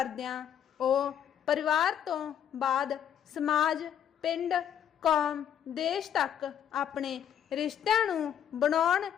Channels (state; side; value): quieter; right; 9.3 dB